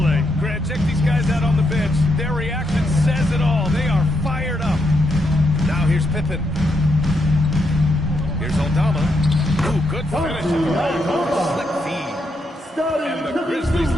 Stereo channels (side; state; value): both; normal; correlation 0.80